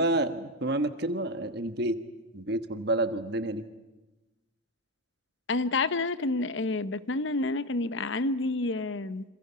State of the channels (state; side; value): normal; both; correlation 0.15